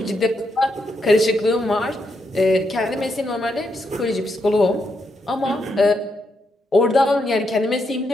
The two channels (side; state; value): both; normal; correlation 0.80